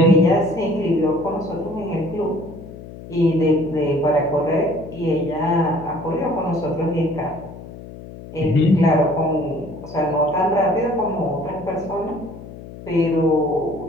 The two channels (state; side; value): noise; left; hum, 15 dB below the sound